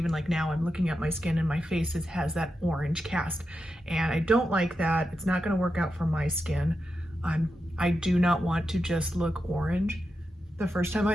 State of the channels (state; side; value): normal; both; correlation 0.88